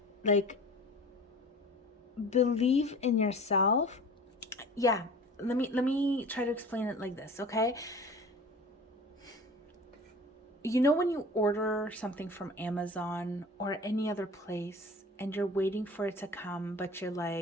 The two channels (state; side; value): normal; both; correlation 0.40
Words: Like, believe in yourself. Yeah, let me try to explain it like this, okay? You know when you order something from Amazon or any other place and you're waiting for it to come, but you're